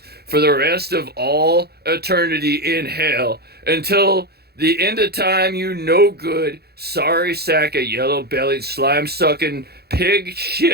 for the rest of all eternity in hell, until the end of time, you no good sorry sack of yellow-bellied, slime-sucking, pig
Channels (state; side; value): late; left; 0.46 ms